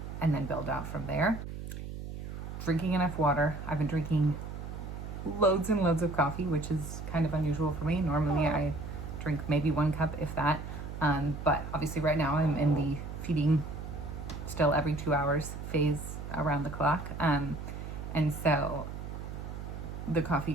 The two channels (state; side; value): noise; right; hum, 8 dB below the sound